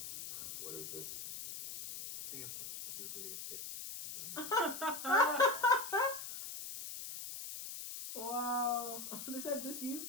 What is this? A sampling of your greatest hits. Wow. They said this you?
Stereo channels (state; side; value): noise; left; hiss, 8 dB below the sound